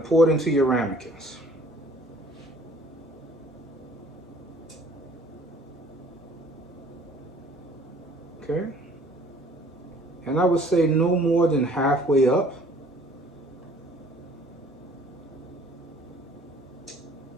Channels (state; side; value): normal; both; correlation 0.55